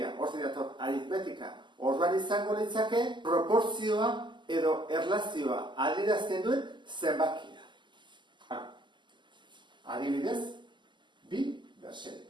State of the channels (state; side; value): late; left; 0.22 ms